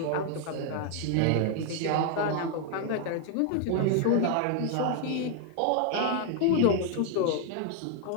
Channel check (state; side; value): different; both; correlation 0.00